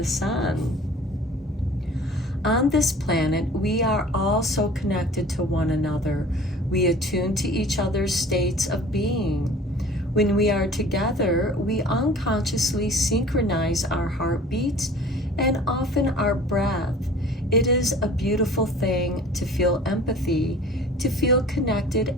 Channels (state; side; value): normal; both; correlation 0.46